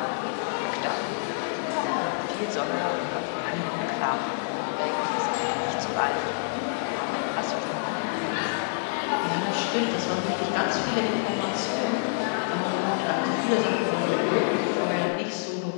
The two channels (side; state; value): right; silent; digital silence